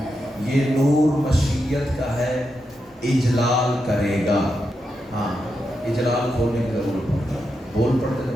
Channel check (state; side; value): normal; both; correlation 0.86